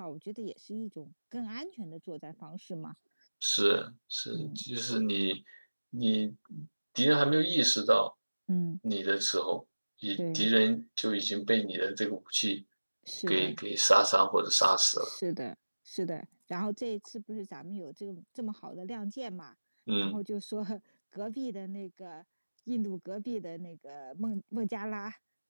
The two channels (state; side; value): inverted; both; correlation -1.00